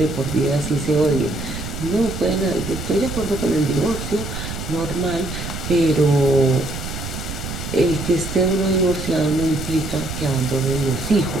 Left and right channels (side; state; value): right; noise; rumble, 7 dB below the sound